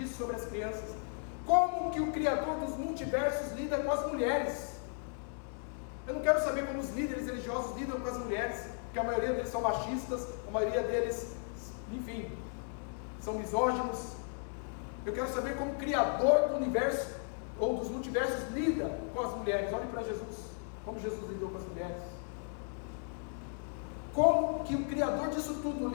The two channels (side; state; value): right; silent; 54 dB below the other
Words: sobre as crianças. Como que o Criador dos multiversos lida com as mulheres? Eu não quero saber como os líderes religiosos lidam com as mulheres, porque a maioria deles são machistas, a maioria deles, enfim, são misóginos. Eu quero saber como o Criador do universo, ou dos multiversos, lida com as mulheres. Olhe para Jesus, como Jesus lidou com as mulheres. Como que o Criador disso tudo